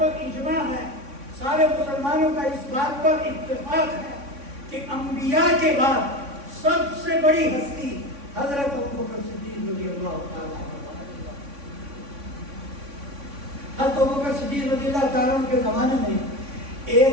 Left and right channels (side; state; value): left; late; 3.6 ms